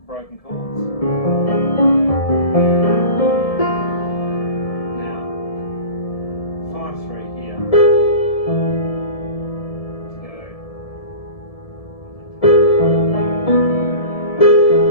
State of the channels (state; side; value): late; right; 1.7 ms